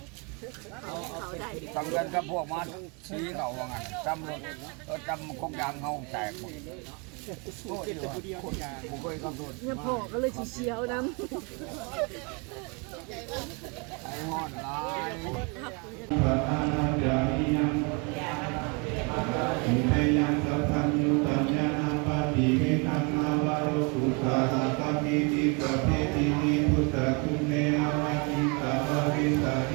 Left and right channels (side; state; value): left; quieter; 32.4 dB